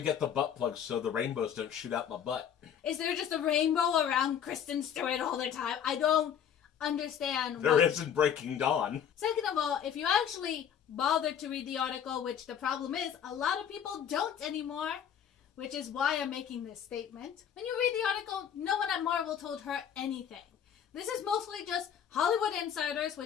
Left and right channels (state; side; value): quieter; right; 8.7 dB